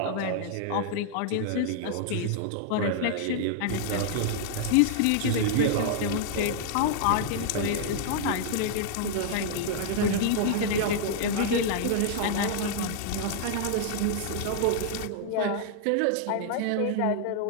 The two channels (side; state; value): both; different; correlation -0.01